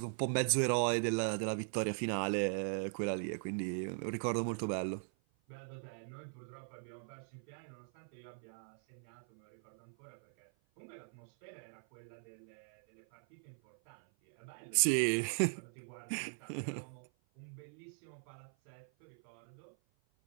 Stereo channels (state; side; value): silent; left; 51 dB below the other